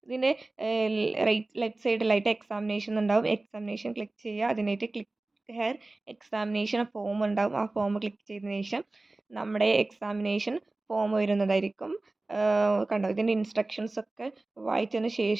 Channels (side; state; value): left; quieter; 3.0 dB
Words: ഇതിൻ്റെ ലെഫ്റ്റ് സൈഡിലായിട്ട് എക്സാമിനേഷൻ ഉണ്ടാവും. എക്സാമിനേഷൻ ക്ലിക്ക് ചെയ്യുക. അതിനായിട്ട് ക്ലിക്ക് ഹെയർ എക്സാമിനേഷൻ ഫോം ഉണ്ടാവും. ആ ഫോം ക്ലിക്ക് ചെയ്തതിന് ശേഷം നമ്മുടെ എക്സാമിനേഷൻ ഫോം വരുന്നതായിരിക്കും. കണ്ടോ, ഇതിൻ്റെ ഇൻസ്ട്രക്ഷൻസ് ഒക്കെ വായിച്ചതിന്